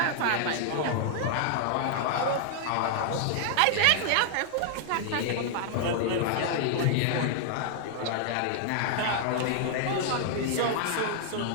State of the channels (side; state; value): both; different; correlation -0.01